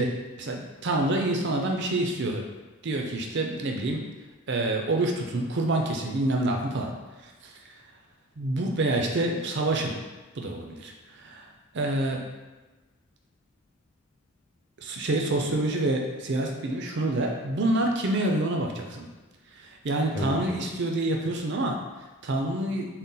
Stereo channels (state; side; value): normal; both; correlation 0.40